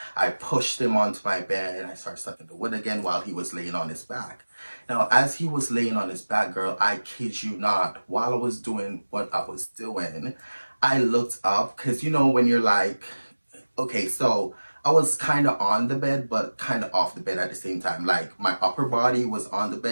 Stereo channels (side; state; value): both; inverted; correlation -1.00